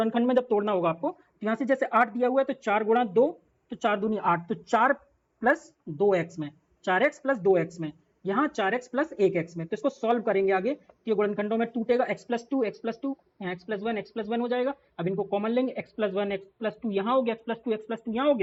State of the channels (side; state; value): both; identical; correlation 1.00